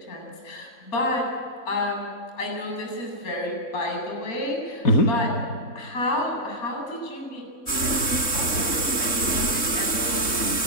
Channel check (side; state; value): right; late; 3.6 ms